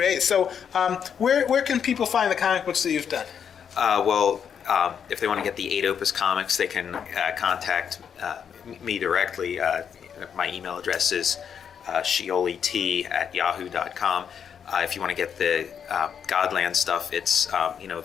So, where can people find the comic books that you've done? If they want to get the 8 Opus comics, they can contact me directly. My email address is shiolit@yahoo.com. If you want to get the Godland stuff, it's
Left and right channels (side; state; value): right; quieter; 7.7 dB